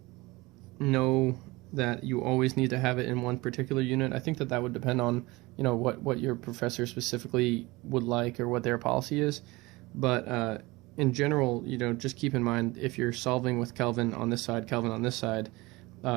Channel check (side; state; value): left; quieter; 22.1 dB